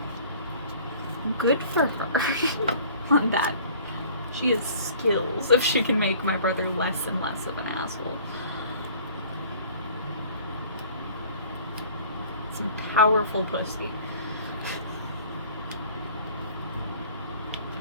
good for her on that. She has skills if she can make my brother less and less of an asshole. Some powerful pussy.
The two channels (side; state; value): both; inverted; correlation -0.50